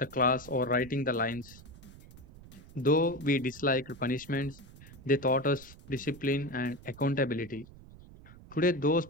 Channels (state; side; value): noise; right; rumble, 19 dB below the sound